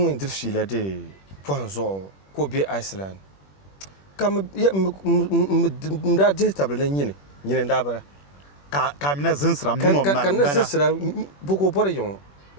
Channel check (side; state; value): right; late; 21 ms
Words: in dir fila de ponzo ko be Iceland kam ya mda de table nyine nyine ndabara ka mina zinsra mo ma kan na zinsra buko bor yon